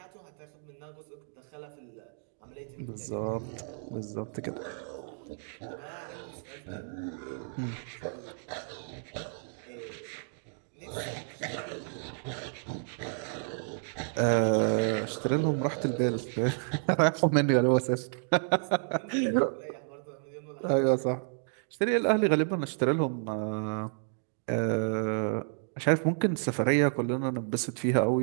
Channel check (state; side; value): silent; left; digital silence